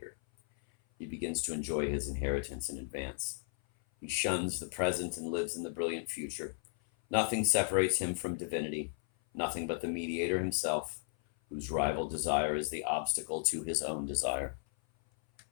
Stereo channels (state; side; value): silent; right; 55 dB below the other